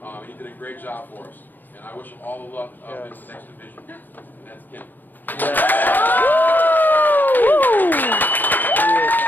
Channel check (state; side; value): late; right; 0.087 ms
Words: He did a great job for us. And I wish him all the luck in the next division. And that's Kim.